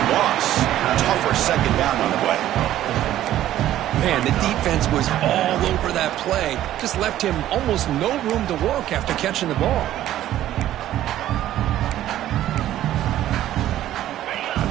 loss. Tougher second down on the way. Man, the defense was all over that play. Just left him almost no room to work after catching the ball. And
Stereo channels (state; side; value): quieter; left; 13.0 dB